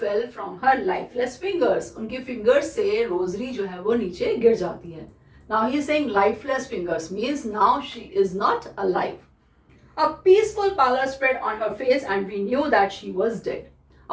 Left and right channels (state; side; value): identical; both; correlation 1.00